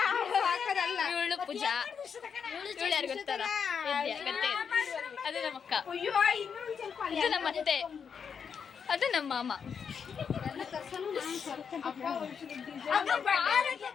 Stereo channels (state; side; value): quieter; right; 6.7 dB